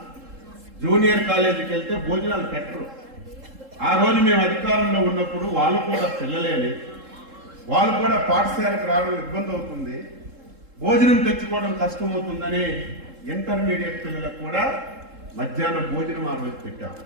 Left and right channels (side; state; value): left; late; 3.7 ms